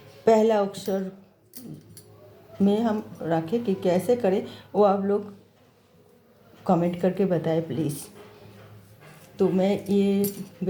पहला अक्षर में हम रखें कि कैसे करें, वो आप लोग कमेंट करके बताएं प्लीज़। तो मैं ये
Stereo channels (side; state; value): both; identical; correlation 1.00